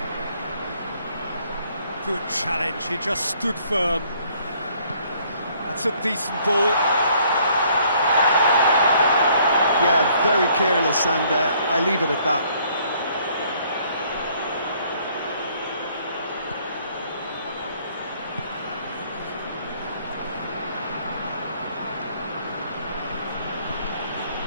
Good challenge, he just stood firm. That's a decent ball. Yeah, very careless, and I leave it at that.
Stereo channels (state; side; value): inverted; both; correlation -0.63